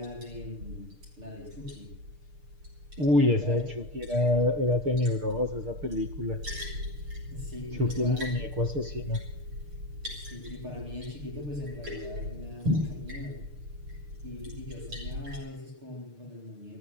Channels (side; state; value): left; late; 6.6 ms